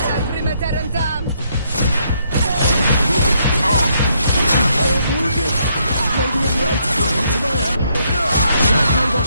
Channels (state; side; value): inverted; both; correlation -0.73